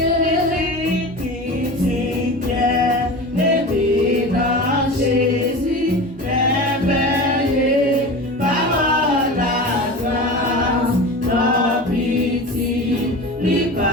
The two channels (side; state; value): both; normal; correlation 0.31